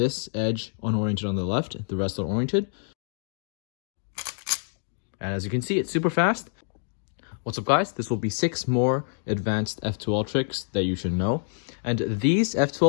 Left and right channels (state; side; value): silent; right; digital silence